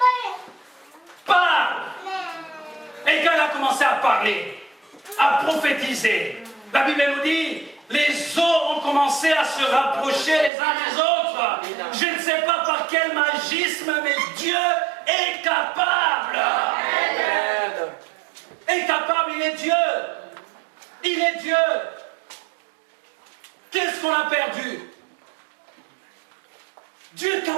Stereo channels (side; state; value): left; drops out; at 10.5 s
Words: Parle. Et quand il a commencé à parler, à prophétiser, la Bible nous dit: les eaux ont commencé à se rapprocher les uns des autres. Je ne sais pas par quel magisme, mais Dieu est capable. Amen. Est capable, il est Dieu. Il est Dieu. Qu'est-ce qu'on a perdu? Dieu est